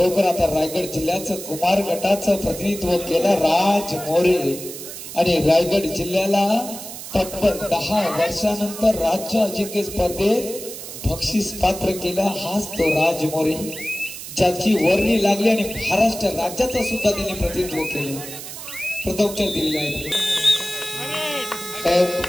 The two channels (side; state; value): right; noise; hiss, 11 dB below the sound